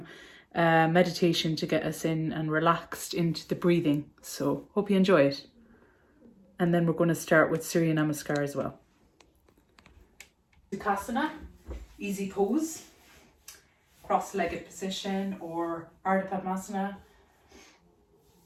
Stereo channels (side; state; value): both; identical; correlation 1.00